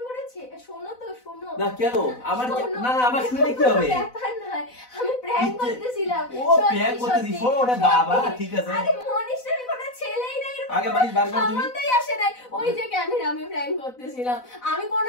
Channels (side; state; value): right; late; 4.0 ms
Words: কোনো শোনো তো, শোনো না কেন আমার, না আমার শুনে কি হবে? ব্যাপার নাই, আমি প্র্যাঙ্ক করতেছিলাম। ও প্র্যাঙ্ক করতেছি, শোনো ওটা বাবা, ঠিক আছে। আরে মনীষ নামে কোনো ছেলেই নাই, এরকম আগে মনীষ বার করো তুমি। সম্বন্ধই আসে নাই। ওই যে ক্যামেরা, আমি প্র্যাঙ্ক করতেছিলাম। আমি